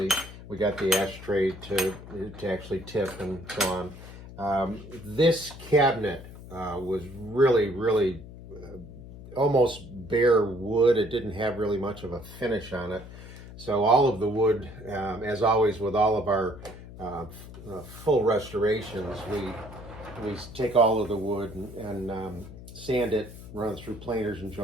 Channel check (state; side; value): noise; left; hum, 15 dB below the sound